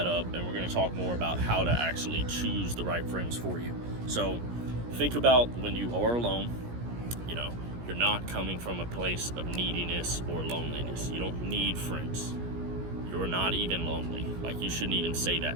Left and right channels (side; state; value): left; late; 17 ms